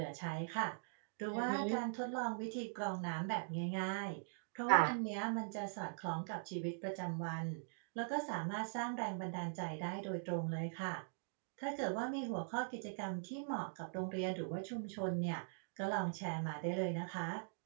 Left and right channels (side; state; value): left; silent; digital silence